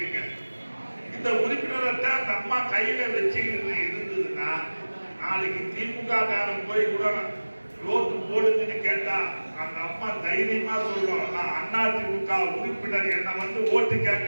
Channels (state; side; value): inverted; both; correlation -1.00